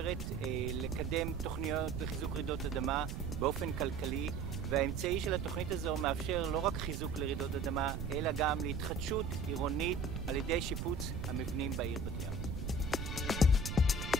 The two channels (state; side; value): noise; right; rumble, 4 dB below the sound